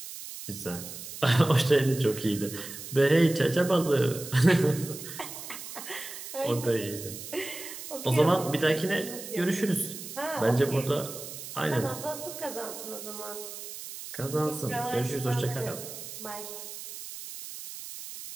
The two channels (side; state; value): right; noise; hiss, 11 dB below the sound